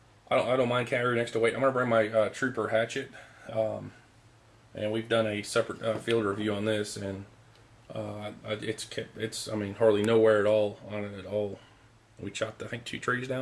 I don't mind carrying extra weight. I'm going to bring my Trooper hatchet, and we've done a separate field review on this, and it's hardly no wear at all on it at all. We chopped I think 2 trees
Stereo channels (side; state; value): both; identical; correlation 1.00